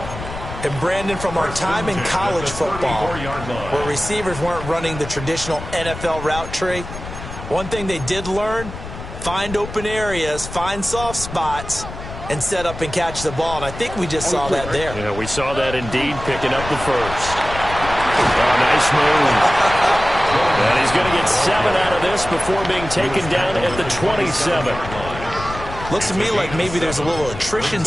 And Brandon, from our time in college football, where receivers weren't running the traditional NFL route tree, one thing they did learn, find open areas, find soft spots, and set up and catch the ball. And I think we just saw that there. Yeah, we saw that indeed, picking up the 1st. Oh, nice move. And he's going to get 7 out of this before being taken down at the 27. Looks to me like maybe there's a little attrition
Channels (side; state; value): left; noise; rumble, 10 dB below the sound